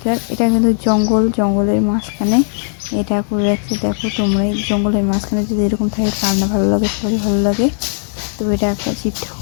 এটা কিন্তু জঙ্গলের মাঝখানে এটা করে রাখছে। দেখো তোমরা এই জঙ্গলের মাঝখানে যদি এরকম থাকে কার না ভালো লাগে, সবারই ভালো লাগে। তো এটা একটা শিব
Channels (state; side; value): silent; right; 61 dB below the other